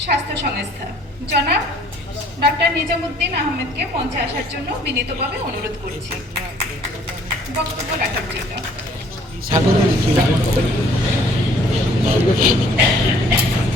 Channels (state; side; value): normal; both; correlation 0.58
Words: স্বাস্থ্য সংস্থা, জনাব ডাক্তার নিজামুদ্দিন আহমেদকে মঞ্চে আসার জন্য বিনীতভাবে অনুরোধ করছি বক্তব্য রাখার জন্য।